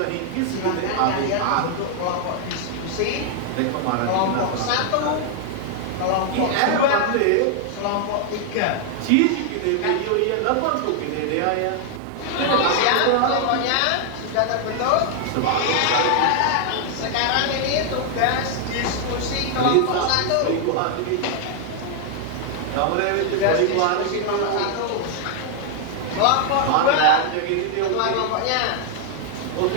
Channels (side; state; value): both; different; correlation 0.00